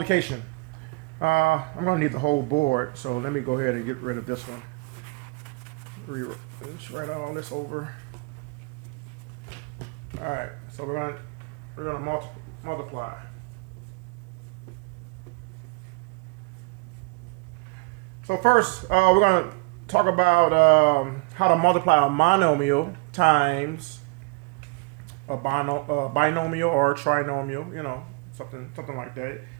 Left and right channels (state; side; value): quieter; left; 28.6 dB